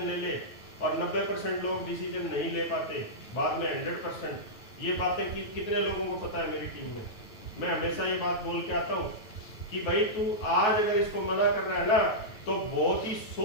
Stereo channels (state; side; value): late; right; 9.3 ms